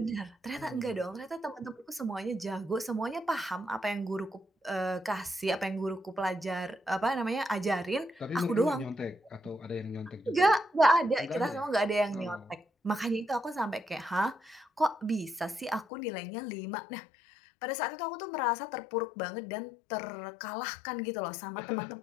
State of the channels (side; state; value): right; drops out; at 15.9 s